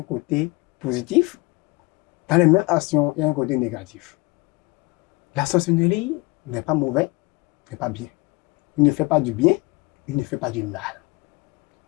côté positif. Dans les mêmes actions, il y a un côté négatif. La sorcellerie n'est pas mauvais, n'est pas bien. Il ne fait pas du bien, il ne fait pas du mal.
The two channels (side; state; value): right; quieter; 25.0 dB